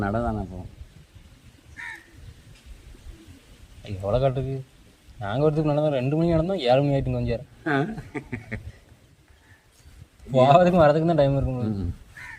நட தானே போவோம். களக்காட்டுக்கு நாங்கள் வரதுக்கு நடந்தோம் 2 மணி நடந்தோம் 7 மணி ஆகிட்டு கொஞ்சம் போகிறதுக்கும் வரதுக்கு தான் டைம் இருக்கும்.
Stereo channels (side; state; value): both; identical; correlation 1.00